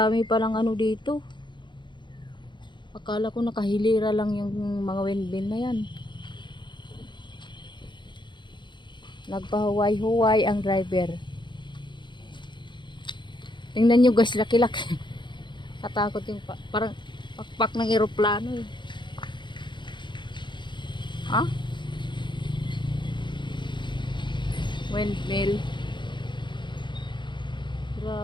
palang ano dito. Akala ko nakahilira lang yung mga windmill na yan. Nagpahuway-huway ang driver. Tingnan nyo guys, laki-laki. Katakot yung parang pakpak ng eroplano eh. Ha? Windmill.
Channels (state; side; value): late; right; 0.23 ms